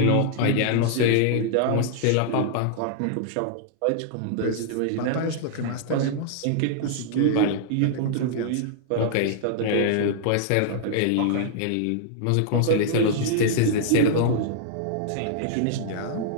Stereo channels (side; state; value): both; different; correlation -0.01